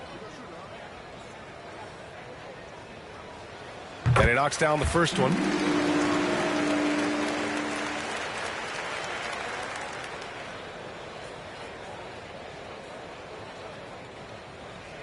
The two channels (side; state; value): both; identical; correlation 1.00